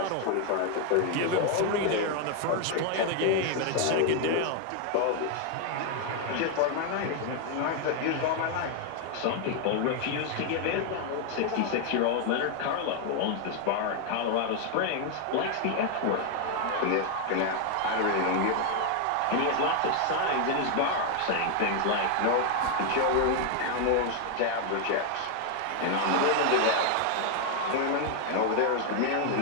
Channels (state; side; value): different; both; correlation 0.00